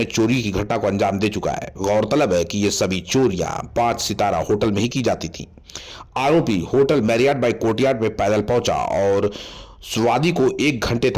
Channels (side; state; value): both; identical; correlation 1.00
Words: चोरी की घटना को अंजाम दे चुका है। गौरतलब है कि ये सभी चोरियां 5 सितारा होटल में ही की जाती थी। आरोपी होटल मैरियट बाय कोर्टयार्ड में पैदल पहुंचा और स्वादी को 1 घंटे